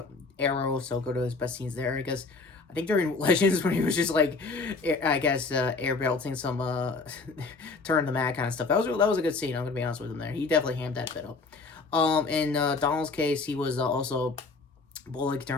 Arrow, so go to his best scenes there. I guess I think during Legends when he was just like, I guess air belting some turn the mat kind of stuff. That was a good scene. I'm gonna be honest with him there. He definitely hammed that bit up. In Donald's case, he was also Bullock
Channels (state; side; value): quieter; right; 4.0 dB